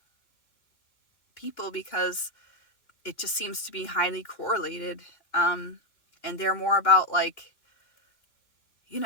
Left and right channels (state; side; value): late; right; 2.8 ms